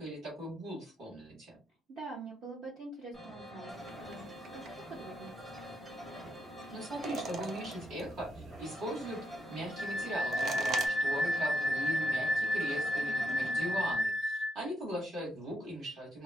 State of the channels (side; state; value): both; normal; correlation 0.80